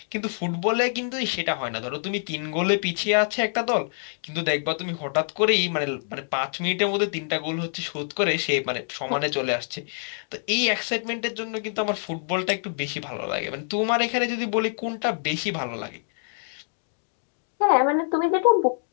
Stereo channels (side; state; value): right; silent; digital silence